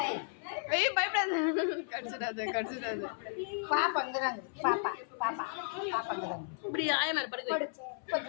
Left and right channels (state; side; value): silent; right; 55 dB below the other